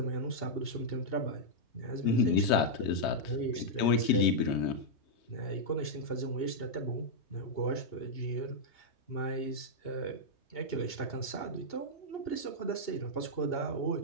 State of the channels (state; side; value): late; right; 2.8 ms